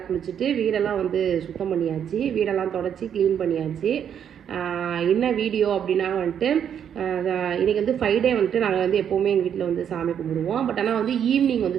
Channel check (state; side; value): quieter; left; 8.7 dB